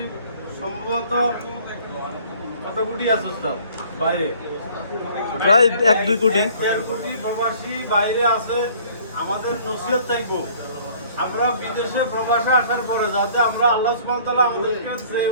সম্ভবত কত কোটি আছে ওস্তাদ বাইরে, প্রায় 1-2 কোটি, 1-1.5 কোটি প্রবাসী বাইরে আছে। আমাদের নসিহত থাকবো আমরা বিদেশে প্রবাসে আসার পরে যাতে আমরা আল্লাহ সুবহানাহু ওয়া তাআলা আমাদেরকে যে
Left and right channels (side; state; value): both; inverted; correlation -0.54